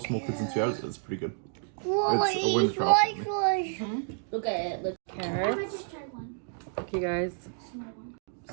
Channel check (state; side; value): silent; left; digital silence